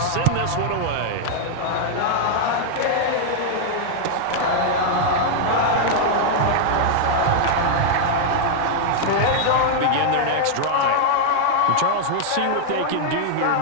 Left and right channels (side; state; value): both; different; correlation -0.01